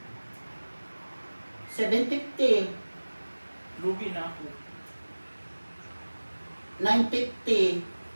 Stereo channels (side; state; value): both; inverted; correlation -1.00